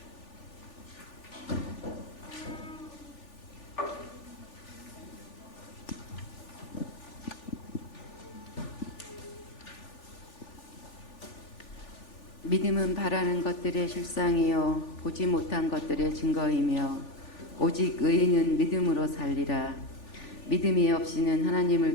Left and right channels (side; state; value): right; late; 3.4 ms